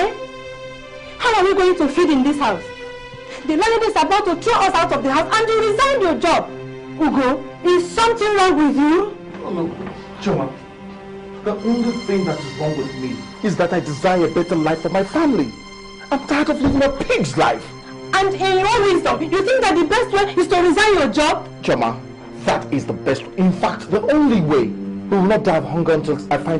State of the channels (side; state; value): both; identical; correlation 1.00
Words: How are we going to feed in this house? The landlady is about to throw us out of the house and you resigned your job. Ugo, is something wrong with you? Oh no, Choma. The only thing that is wrong with me is that I desire a better life for my family. I'm tired of living a pig's life. And in your wisdom, you think that the best way is to resign your job? Choma, that is the best. In fact, the only way. We will not die of hunger until I find